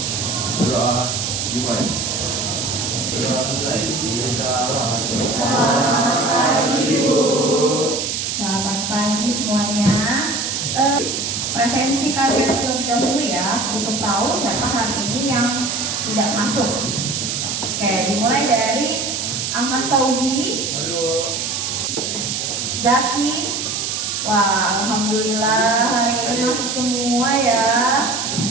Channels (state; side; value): noise; right; hiss, 2 dB below the sound